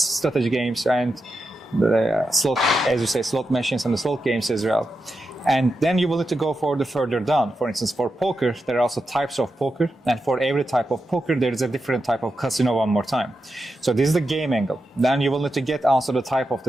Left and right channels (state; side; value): normal; both; correlation 0.88